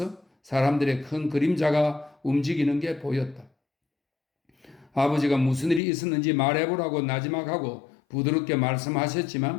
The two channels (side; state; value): right; drops out; at 5.8 s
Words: 사람들의 큰 그림자가 움직이는 게 보였다. 아버지가 무슨 일이 있었는지 말해보라고 나지막하고 부드럽게